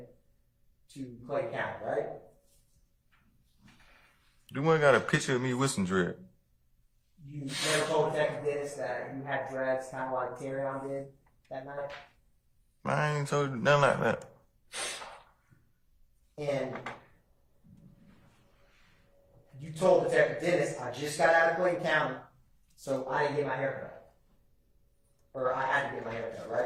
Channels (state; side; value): identical; both; correlation 1.00